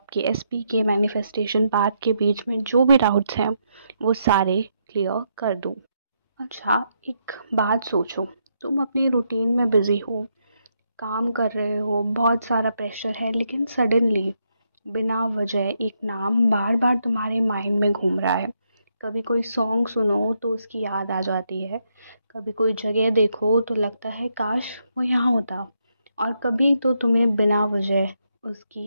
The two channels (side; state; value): both; inverted; correlation -0.79